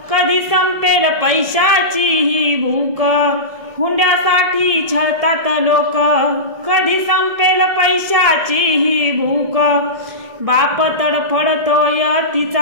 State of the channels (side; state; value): left; late; 1.7 ms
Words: कधी संपेल पैशाची ही भूक। हुंड्यासाठी छळतात लोक कधी संपेल पैशाची ही भूक। बाप तडफडतोय